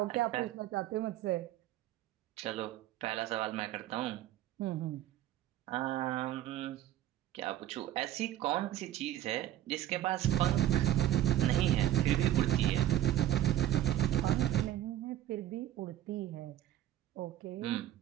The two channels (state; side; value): quieter; left; 12.8 dB